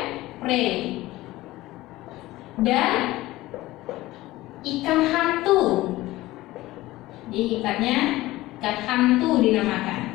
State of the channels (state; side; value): quieter; right; 17.7 dB